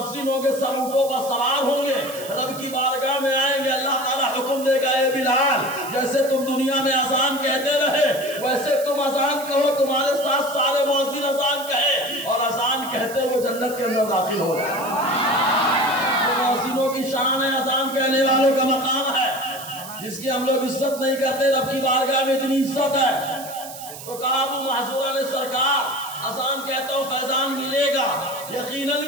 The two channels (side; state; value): right; noise; hiss, 13 dB below the sound